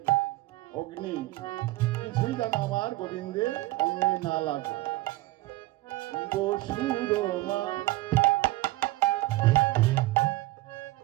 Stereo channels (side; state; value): left; quieter; 18.4 dB